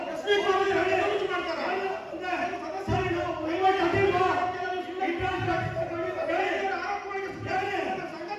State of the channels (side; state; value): both; identical; correlation 1.00